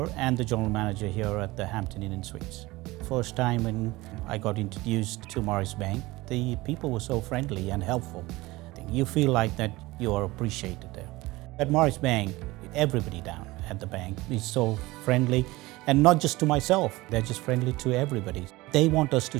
and the general manager here at the Hampton Inn and Suites. First time when I got introduced to Morris Bank, the people were so friendly and helpful. You feel like that you are appreciated there. At Morris Bank, everybody down at the bank is so friendly, and not just to myself, they're just friendly to everybody. They want us to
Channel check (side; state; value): left; quieter; 20.3 dB